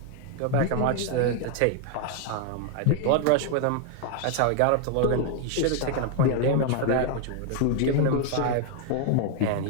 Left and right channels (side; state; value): both; different; correlation 0.00